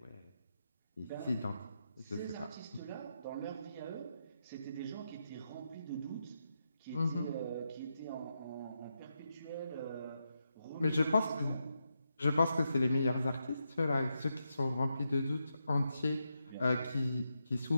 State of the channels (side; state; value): both; inverted; correlation -0.85